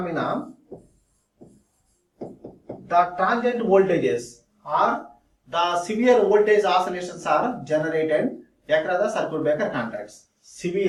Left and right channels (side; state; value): both; identical; correlation 1.00